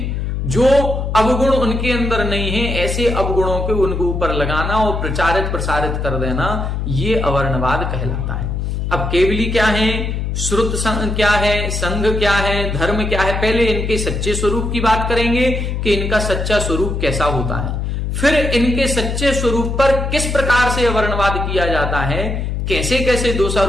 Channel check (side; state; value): left; noise; hum, 2 dB below the sound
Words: जो अवगुण उनके अंदर नहीं है, ऐसे अवगुणों के उनके ऊपर लगाना और प्रचारित प्रसारित कर देना, ये अवर्णवाद कहलाता है। अब केवली क्या है, श्रुत संघ क्या है, संघ क्या है, धर्म क्या है? पहले इनके सच्चे स्वरूप की बात करेंगे कि इनका सच्चा स्वरूप कैसा होता है। फिर इनके सच्चे स्वरूप पर किस प्रकार से अवर्णवाद किया जाता है, कैसे कैसे